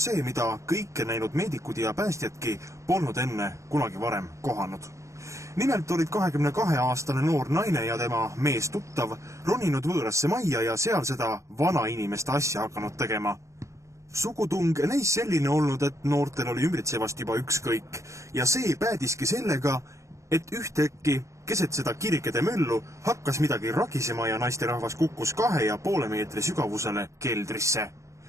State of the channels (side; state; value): left; late; 0.15 ms